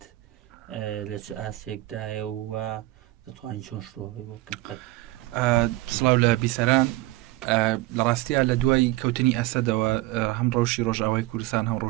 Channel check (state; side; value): quieter; left; 18.4 dB